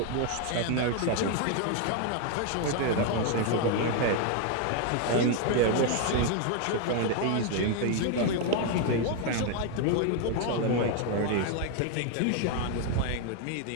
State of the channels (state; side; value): different; both; correlation 0.01